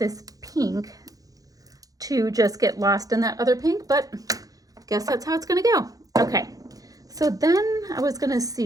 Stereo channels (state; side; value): late; left; 0.17 ms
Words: pink to just get lost in that other pink, but guess that's how it's gonna go. Okay, so then I was gonna